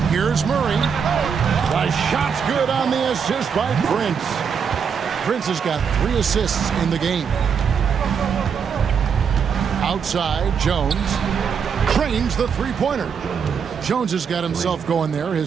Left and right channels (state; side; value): quieter; left; 6.8 dB